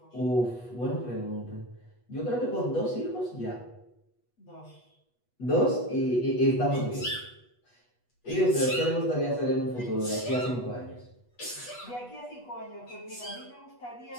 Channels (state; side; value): late; right; 8.2 ms